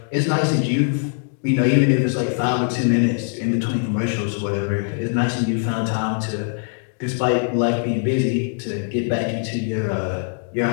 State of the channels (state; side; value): silent; right; 59 dB below the other